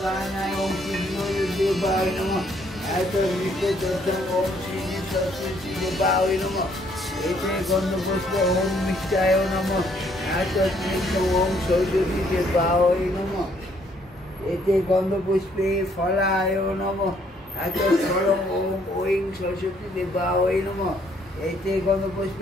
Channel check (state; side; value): normal; both; correlation 0.67